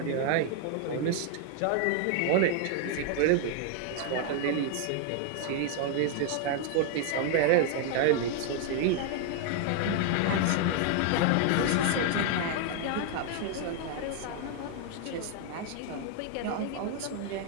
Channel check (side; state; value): both; different; correlation 0.00